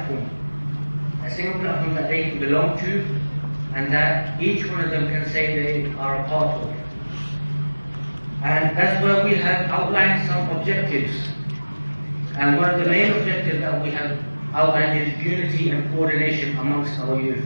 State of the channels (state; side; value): inverted; both; correlation -1.00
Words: that they can belong to, and that each one of them can say they are a part of. And that's where we have outlined some objectives. And one of the main objectives that we have outlined is unity and coordination amongst our youth